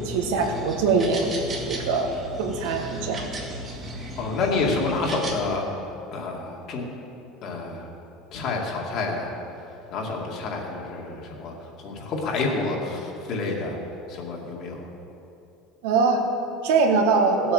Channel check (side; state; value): both; normal; correlation 0.19